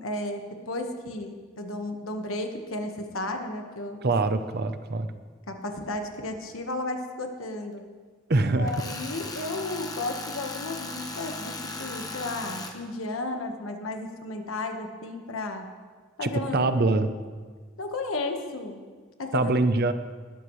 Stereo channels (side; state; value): both; normal; correlation 0.33